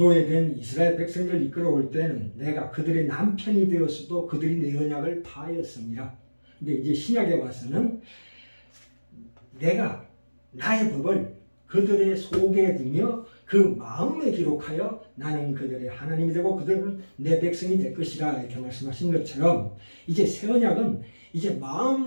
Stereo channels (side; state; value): both; inverted; correlation -1.00